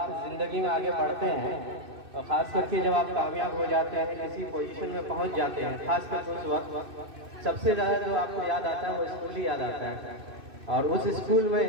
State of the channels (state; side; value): late; left; 2.6 ms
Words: ज़िंदगी में आगे बढ़ते हैं और ख़ास करके जब आप कामयाब हो जाते हैं, किसी पोजीशन में पहुँच जाते हैं, ख़ास करके उस वक्त सबसे ज़्यादा जो आपको याद आता है वो स्कूल ही याद आता है। और उस स्कूल में